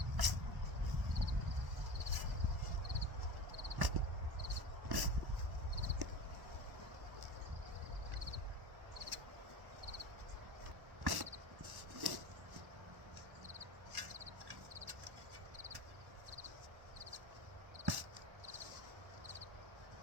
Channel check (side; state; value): left; late; 1.1 ms